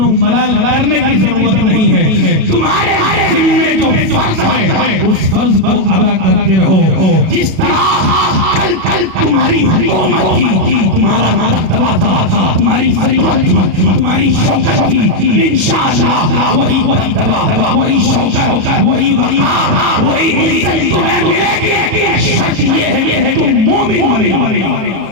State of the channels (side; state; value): left; late; 37 ms